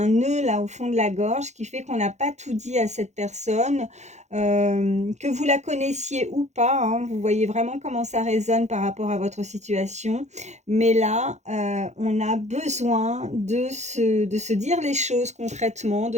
nœud là au fond de la gorge qui fait qu'on n'a pas tout dit à cette personne, que vous la connaissiez ou pas, hein. Vous voyez vraiment comment ça résonne par rapport à votre situation. Mais là, on a besoin de se dire les choses concrètement,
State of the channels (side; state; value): left; late; 0.33 ms